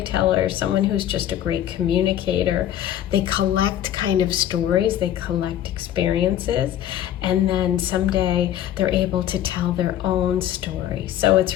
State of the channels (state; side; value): quieter; right; 11.5 dB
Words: someone who's just a great communicator. They collect kind of stories, they collect experiences, and then someday they're able to tell their own story. So